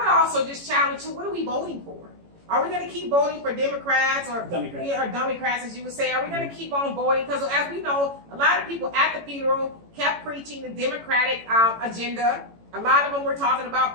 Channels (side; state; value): left; late; 18 ms